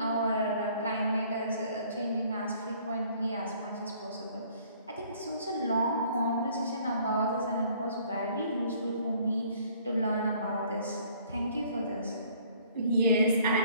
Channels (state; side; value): inverted; both; correlation -0.58